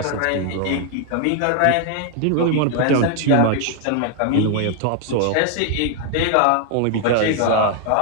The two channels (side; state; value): both; different; correlation 0.00